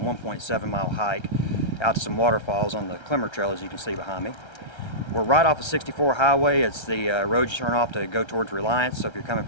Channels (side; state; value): right; late; 1.3 ms